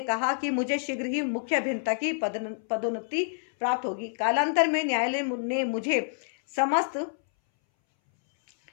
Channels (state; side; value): silent; right; 59 dB below the other